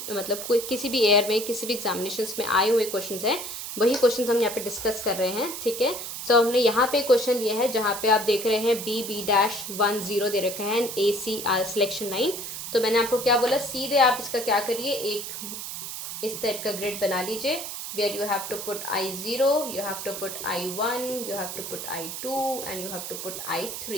मतलब कोई किसी भी ईयर में किसी भी एग्जामिनेशंस में आए हुए क्वेश्चंस हैं, वही क्वेश्चंस हम यहाँ पे डिस्कस कर रहे हैं, ठीक है। सो हमने यहाँ पे क्वेश्चन लिया है जहाँ पे आप देख रहे हैं बी बी डैश 1 0 दे रखा है, ए सी सिलेक्शन लाइन। तो मैंने आपको क्या बोला, सीधे आप इसका क्या करिए, एक इस टाइप का ग्रिड बना लीजिए, where you have to put I0, you have to put I1, you have to put I2 and you have to put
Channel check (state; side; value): noise; right; hiss, 7 dB below the sound